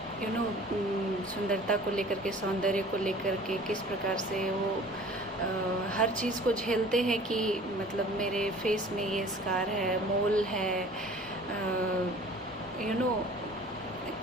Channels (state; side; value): normal; both; correlation 0.46